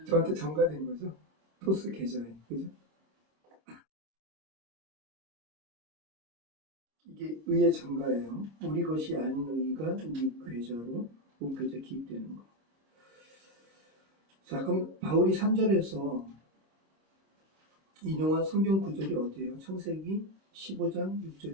저한테 전가된 거죠. 토스 계좌에. 그죠? 이게 의의 전가예요. 우리 것이 아닌 의가 우리 계좌로 옮겨져 기입되는 거. 자, 그럼 바울이 3절에서 인용한 성경 구절이 어디예요? 창세기 15장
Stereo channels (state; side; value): late; left; 26 ms